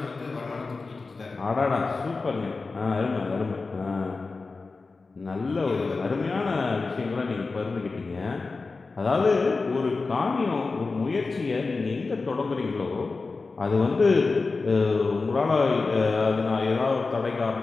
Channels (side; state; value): right; quieter; 4.0 dB